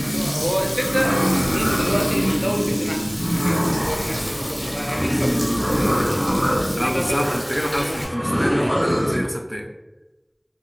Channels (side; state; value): both; identical; correlation 1.00